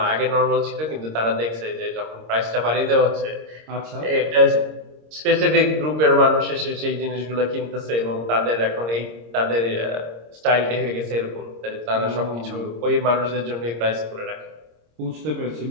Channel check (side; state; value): left; late; 26 ms